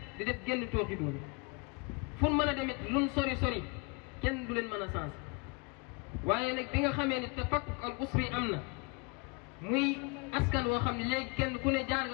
di def génn tooxi doon fu mën a demit luñ sori sori kenn du leen mën a sens waaye nag bi nga xamee ni tafakkuk al usri am na muy askan woo xam ne léegi kenn ku ne jaar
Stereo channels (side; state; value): right; quieter; 30.3 dB